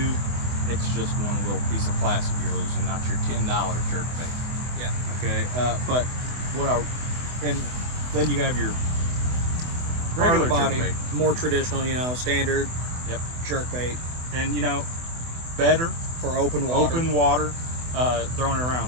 it's just one little piece of plastic you're losing, not your $10 jerkbait. Yeah. Okay. But and then you have your regular body, jerkbait, more traditional, standard. Yep. Jerkbait. And better for open water. Open water, throwing it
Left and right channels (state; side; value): late; left; 24 ms